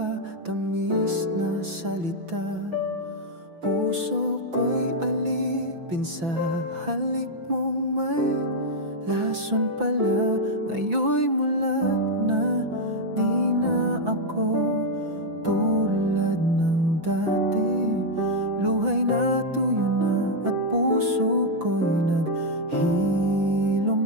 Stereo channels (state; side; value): late; left; 6.0 ms